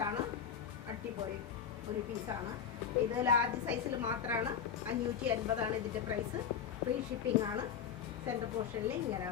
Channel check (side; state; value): right; quieter; 7.8 dB